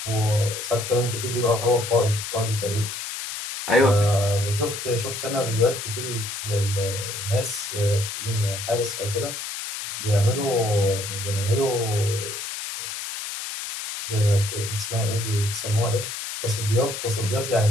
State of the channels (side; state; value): left; noise; hiss, 6 dB below the sound